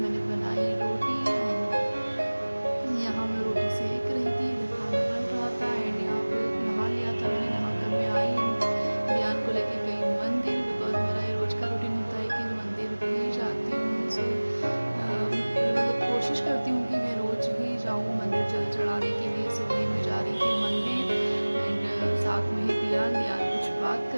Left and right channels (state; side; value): inverted; both; correlation -1.00